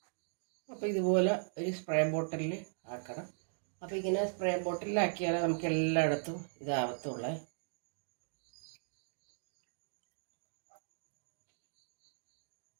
അപ്പോൾ ഇതുപോലെ ഒരു സ്പ്രേ ബോട്ടിലിൽ ആക്കണം. അപ്പോൾ ഇങ്ങനെ സ്പ്രേ ബോട്ടിലാക്കിയാലേ നമുക്ക് എല്ലായിടത്തും ഇതാവത്തുള്ളേ.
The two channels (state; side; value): silent; left; digital silence